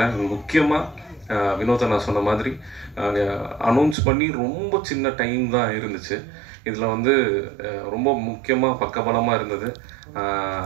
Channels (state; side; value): drops out; left; at 4.0 s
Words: முக்கியமாக வினோத நான் சொன்ன மாதிரி அனௌன்ஸ் பண்ணி ரொம்ப சின்ன டைம் தான் இருந்துச்சு. இதில் வந்து ரொம்ப முக்கியமாக பக்கபலமாக இருந்தது